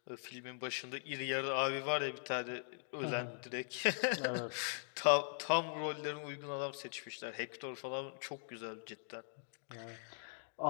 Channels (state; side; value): silent; right; digital silence